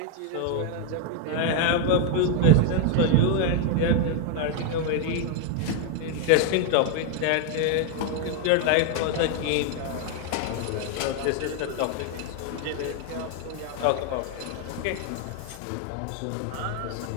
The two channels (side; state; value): both; different; correlation 0.00